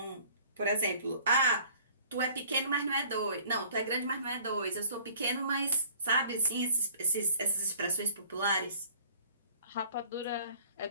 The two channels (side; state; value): both; inverted; correlation -0.53